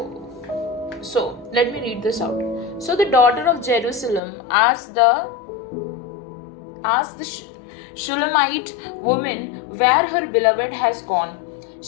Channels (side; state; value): right; drops out; at 4.2 s